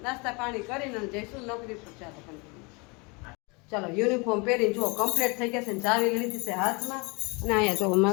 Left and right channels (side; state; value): right; quieter; 29.3 dB